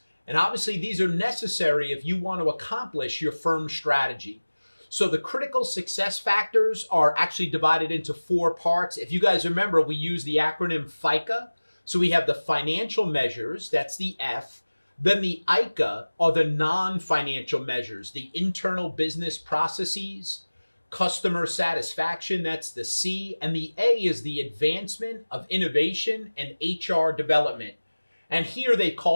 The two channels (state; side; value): inverted; both; correlation -1.00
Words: And obviously, these are necessary if you want to accomplish your firm's strategy. So the critical success factors are actually divided into four parts. If you guys remember, we use the acronym FICA. So we have the financial measures, that's the F. Then the ICA are the non-financial measures, the internal business processes, customer satisfaction, that's the C. And the A is the advancement of innovation and HR development. And here they